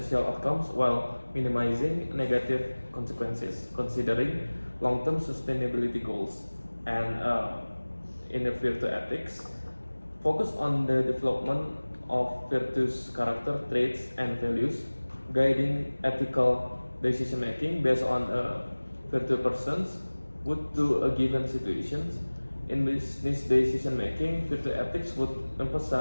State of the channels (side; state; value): both; inverted; correlation -1.00